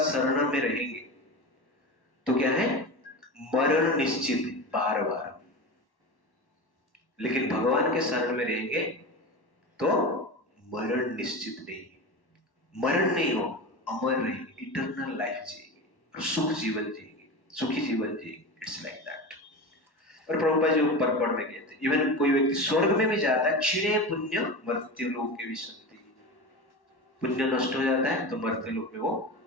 शरण में रहेंगे तो क्या है? मरण निश्चित बार बार। लेकिन भगवान के शरण में रहेंगे तो मरण निश्चित नहीं, मरण नहीं हो, अमर रहेंगे, इटर्नल लाइफ जिएंगे और सुख जीवन जिएंगे, सुखी जीवन जिएंगे। It's like that. और प्रभुपाद जी ऊपर पढ़ में गए थे, इवन कोई व्यक्ति स्वर्ग में भी जाता है, क्षीणे पुण्य मर्त्य लोक के विशंति, पुण्य नष्ट हो जाता है तो मर्त्य लोक में वो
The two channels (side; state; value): right; late; 1.1 ms